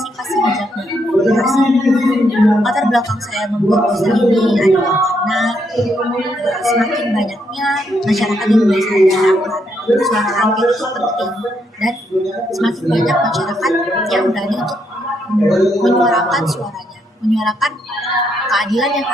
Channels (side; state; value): both; normal; correlation 0.76